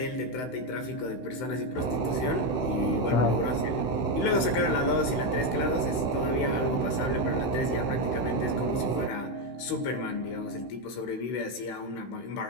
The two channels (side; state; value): right; late; 16 ms